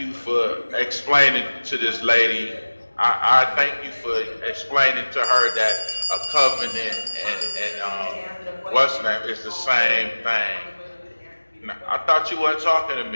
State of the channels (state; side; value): inverted; both; correlation -1.00